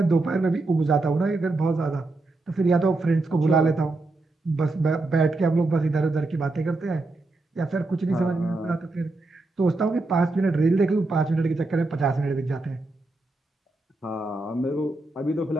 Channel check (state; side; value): quieter; left; 3.1 dB